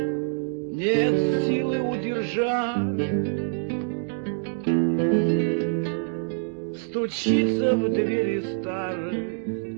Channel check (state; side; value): silent; left; digital silence